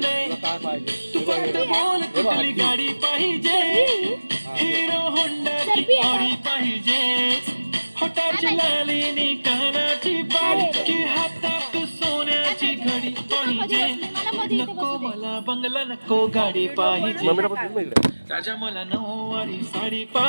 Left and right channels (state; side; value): inverted; both; correlation -1.00